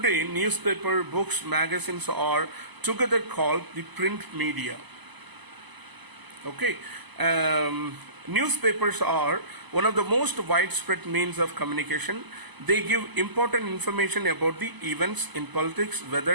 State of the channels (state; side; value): late; left; 1.0 ms